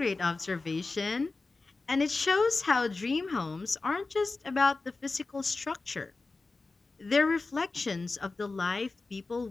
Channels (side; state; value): right; quieter; 3.7 dB